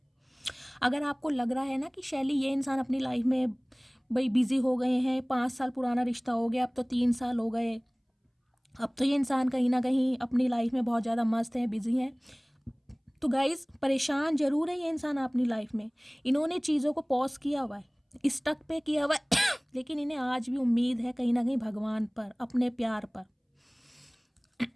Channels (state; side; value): identical; both; correlation 1.00